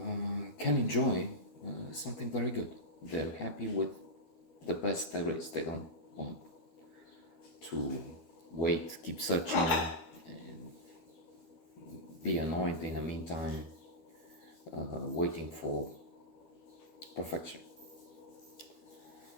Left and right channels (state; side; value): late; right; 12 ms